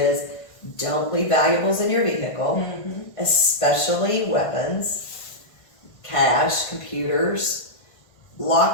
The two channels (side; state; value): right; late; 1.5 ms